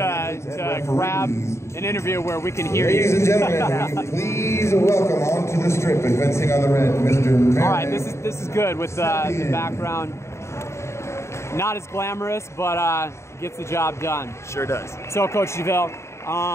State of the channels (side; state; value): right; late; 0.13 ms